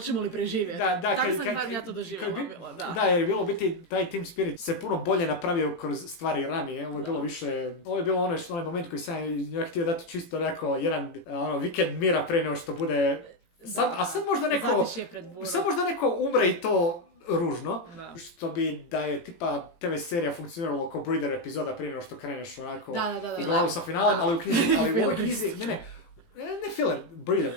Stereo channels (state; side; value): late; right; 18 ms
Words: li preživjeti. Tako sam ja to doživjela. Da, jer je bilo biti taj team spirit se puno bolje napravio kroz stvari ranije. Ovo je bilo više, ovo je bilo onaj moment koji sam ja htio dati čisto jedan vikend mira pre nego što bude. Sad možda neko umre i to ružno, što bi da je tipa TV serija funkcioniralo kao breeder epizoda prije nego što kreneš onako i glavu sa finalem, ali u knjizi, ne filler, breeder,